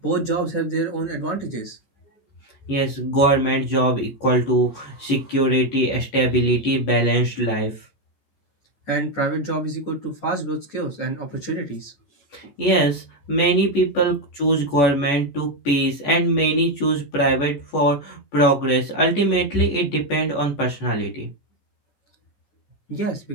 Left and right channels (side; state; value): right; late; 14 ms